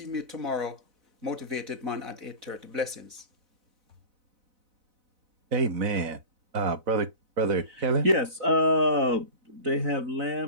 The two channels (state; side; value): late; left; 4.0 ms